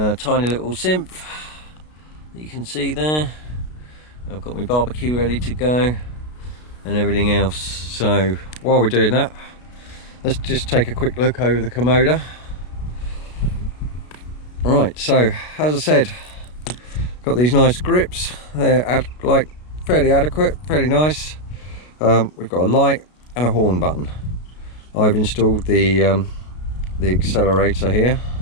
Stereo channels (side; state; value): right; late; 33 ms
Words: little synth that you can see there. I've got my barbecue ready to go and everything else. So while we're doing that, let's just take a quick look over the Kommoda. Right, so as I said, got these nice grips. They're like fairly adequate, fairly nice. We've got a light and a horn button. I've installed the accelerator here,